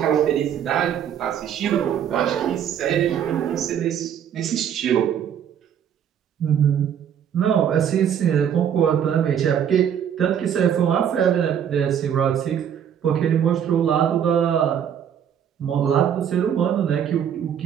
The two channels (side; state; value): left; quieter; 8.9 dB